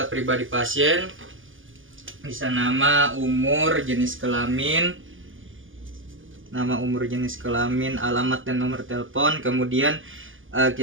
pribadi pasien, bisa nama, umur, jenis kelamin, alamat dan nomor telepon. Kemudian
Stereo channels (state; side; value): late; left; 0.58 ms